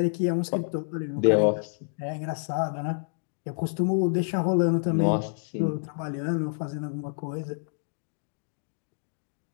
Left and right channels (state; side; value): silent; right; digital silence